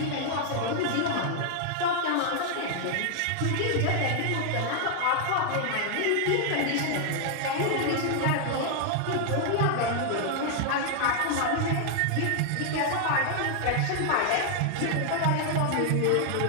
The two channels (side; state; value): both; different; correlation 0.00